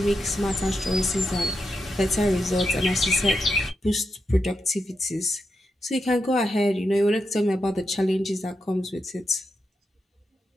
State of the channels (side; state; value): both; normal; correlation 0.86